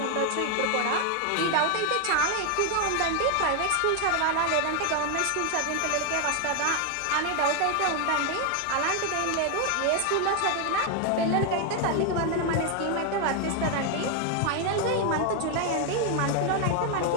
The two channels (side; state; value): both; different; correlation 0.01